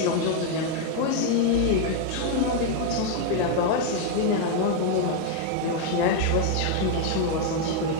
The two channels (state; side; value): different; both; correlation 0.00